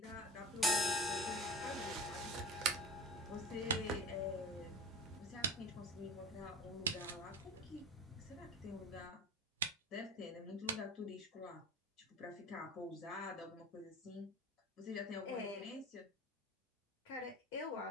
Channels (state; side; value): normal; both; correlation 0.34